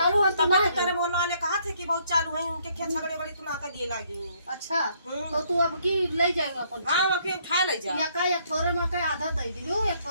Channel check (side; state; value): both; inverted; correlation -0.68